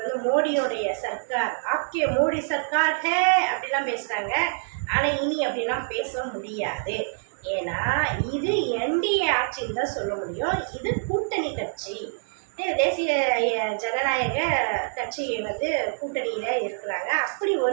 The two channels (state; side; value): silent; left; digital silence